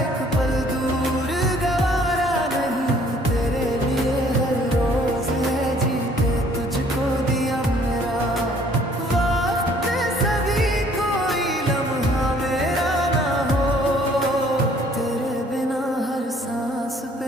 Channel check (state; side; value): normal; both; correlation 0.59